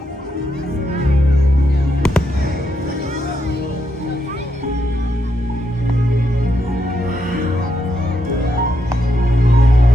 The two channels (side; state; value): both; normal; correlation 0.80